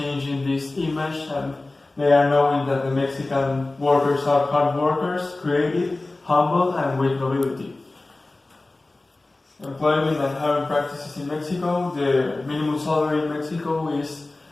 this image, and they are knowing that the Mexican workers are hard workers, creative, humble, and with nobility. Employment and hiring practices in Mexico. The minimum salary in Mexico is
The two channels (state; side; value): quieter; right; 3.0 dB